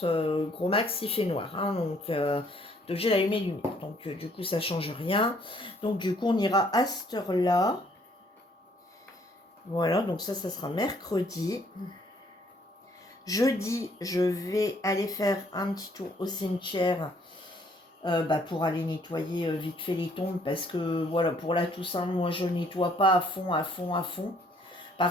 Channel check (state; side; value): normal; both; correlation 0.64